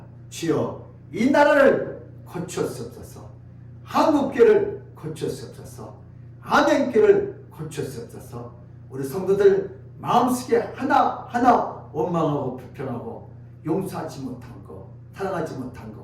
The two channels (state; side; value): identical; both; correlation 1.00